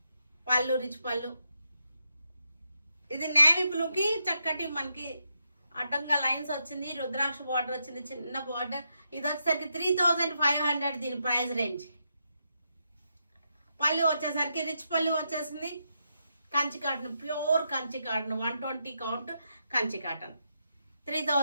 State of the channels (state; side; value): inverted; both; correlation -0.83